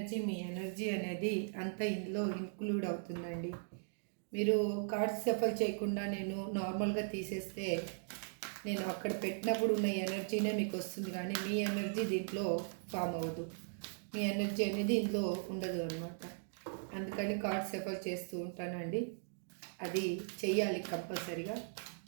మీ ఎనర్జీ అనేది అంత ఇందులో ఇంక్లూడ్ అవుతుందండి. మీరు కార్డ్స్ సఫర్ చేయకుండా నేను నార్మల్గా తీసేస్తే నేను అక్కడ పెట్టినప్పుడు ఉన్న ఎనర్జీనే మీకు వస్తుంది, కానీ మీ ఎనర్జీ దీంట్లో ఫామ్ అవ్వదు. మీ ఎనర్జీ అనేది ఇందులో ఉండదు అనమాట. అందుకని కార్డ్స్ సెఫర్ చేస్తూ ఉంటానండి. అది చెయ్యాలి కంపల్సరీగా.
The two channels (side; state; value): left; silent; digital silence